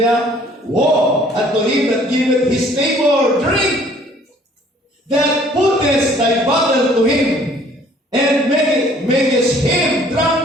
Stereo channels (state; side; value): normal; both; correlation 0.57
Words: woe unto him that giveth his neighbor drink, that putteth thy bottle to him, and makest him